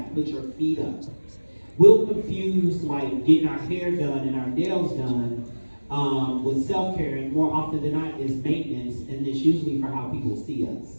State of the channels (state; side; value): inverted; both; correlation -1.00